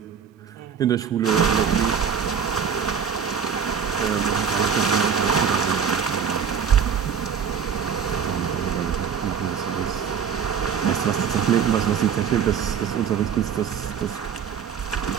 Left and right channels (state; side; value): quieter; left; 7.1 dB